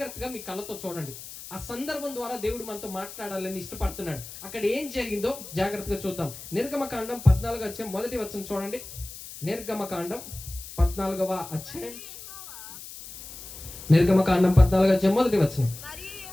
మీ కళ్ళతో చూడండి. ఆ సందర్భం ద్వారా దేవుడు మనతో మాట్లాడాలని ఇష్టపడుతున్నాడు. అక్కడ ఏం జరిగిందో జాగ్రత్తగా చూద్దాం. నిర్గమకాండం 14వ అధ్యాయం 1వ వచనం చూడండి. నిర్గమకాండం 14వ అధ్యాయం 1వ వచనం.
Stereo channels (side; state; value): left; noise; hiss, 13 dB below the sound